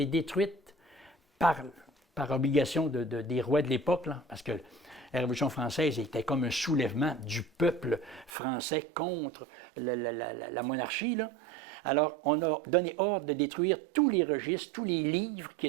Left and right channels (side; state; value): left; drops out; at 8.3 s